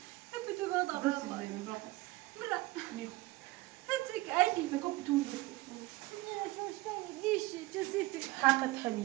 یه بتوی بیا برو برو زمین برو پس برو نیو هتك عادي بگو بتون ليش جسيتي حقت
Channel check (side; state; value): left; quieter; 20.4 dB